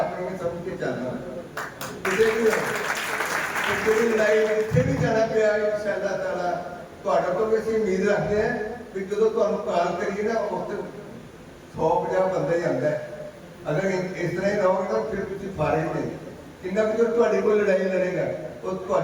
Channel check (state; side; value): identical; both; correlation 1.00